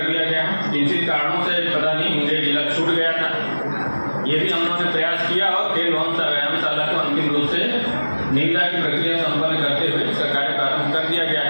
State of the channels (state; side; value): inverted; both; correlation -1.00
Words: दिया गया है। किंचित कारणों से पता नहीं मुंगेर जिला छूट गया था, ये भी हम लोगों ने प्रयास किया और खेल भवन सा व्यायामशाला को अंतिम रूप से निविदा की प्रक्रिया संपन्न करते हुए इसका कार्य प्रारंभ कर दिया गया